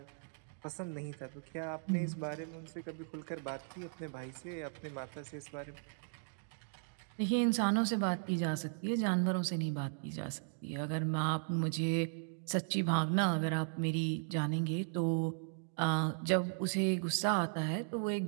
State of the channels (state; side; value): silent; left; digital silence